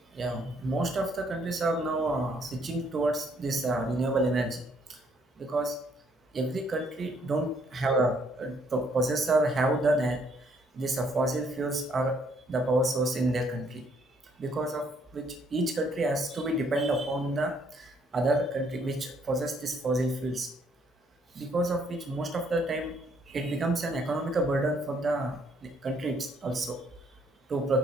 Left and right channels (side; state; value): both; normal; correlation 0.67